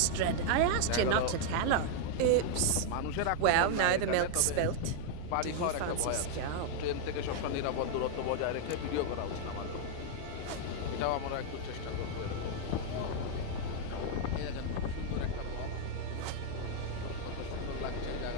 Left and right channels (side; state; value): both; different; correlation 0.00